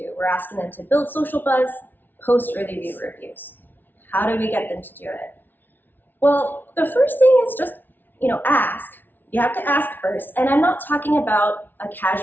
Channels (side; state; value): right; late; 0.091 ms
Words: We're asking them to build social buzz, post early view reviews. How do we get them to do it? Well, the first thing is just, ask. You have to ask first. And I'm not talking about a